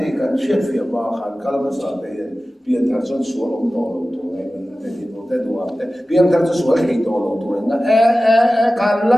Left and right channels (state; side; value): normal; both; correlation 0.96